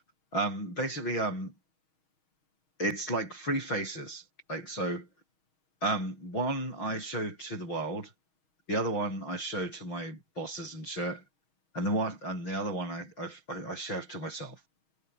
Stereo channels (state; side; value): late; right; 6.3 ms